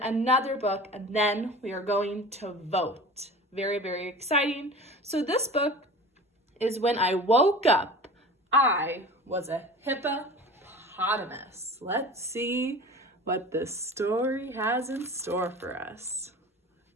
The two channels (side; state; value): both; normal; correlation 0.38